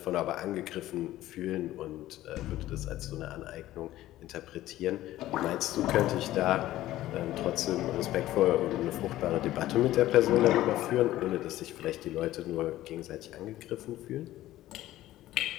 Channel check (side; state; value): right; quieter; 14.9 dB